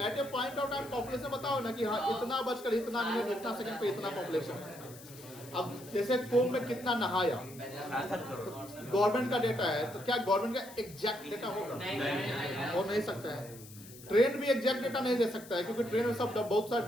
a point of time population बताओ ना कि हाँ इतना बजकर इतना मिनट इतना सेकंड पे इतना पॉपुलेशन है। अब जैसे कुंभ में कितना नहाया, गवर्नमेंट का डेटा है, तो क्या गवर्नमेंट का एग्जैक्ट डेटा होगा? हो नहीं सकता है। ट्रेन भी एग्जैक्ट डेटा नहीं दे सकता है, क्योंकि ट्रेन में सब बहुत सारे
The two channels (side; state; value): left; noise; hiss, 18 dB below the sound